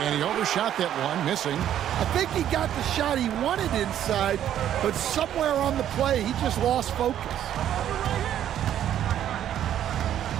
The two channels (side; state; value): left; quieter; 10.8 dB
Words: And he overshot that one, missing. I think he got the shot he wanted inside, but somewhere on the play, he just lost focus.